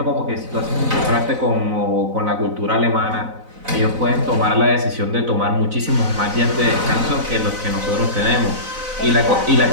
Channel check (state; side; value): late; left; 4.0 ms